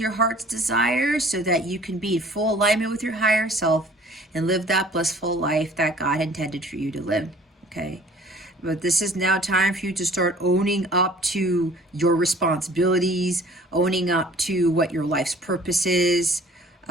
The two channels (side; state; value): both; normal; correlation 0.51